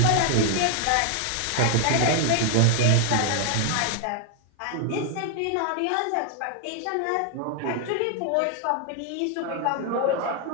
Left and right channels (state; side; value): different; both; correlation 0.00